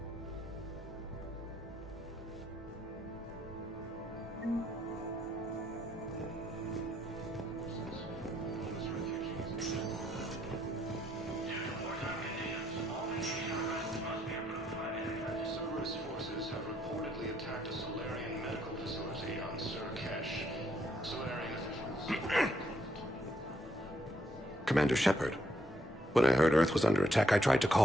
Cerberus forces have reportedly attacked a Solarian medical facility on Surkesh. Solarian officials... Commander Shepard. When I heard Earth was under attack, I tried to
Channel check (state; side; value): normal; both; correlation 0.73